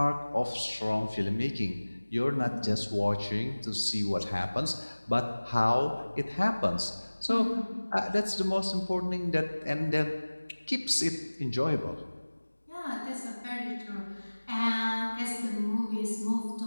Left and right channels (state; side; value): inverted; both; correlation -1.00